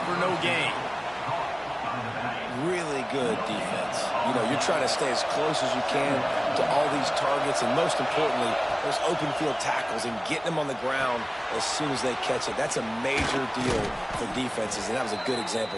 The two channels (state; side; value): identical; both; correlation 1.00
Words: for no gain. Really good defense. You know, you're trying to stay as close as you can to all these targets, and most importantly, those open field tackles and getting them on the ground as soon as they catch it. That's a major deal for defenses, and that was a good example